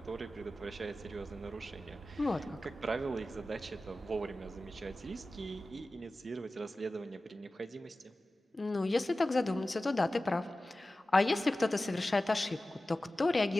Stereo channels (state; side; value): normal; both; correlation 0.96